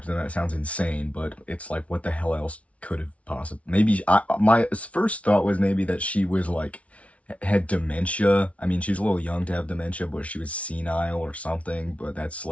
them. That sounds insane. But it's like, what the hell else could have possibly, maybe my first thought was maybe that she was like had dementia. I mean, she was a little young to have dementia, but she was senile or something. But that's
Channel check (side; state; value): right; late; 0.064 ms